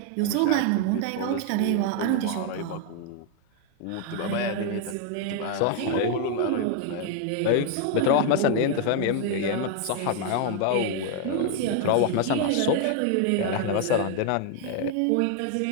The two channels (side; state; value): both; different; correlation 0.00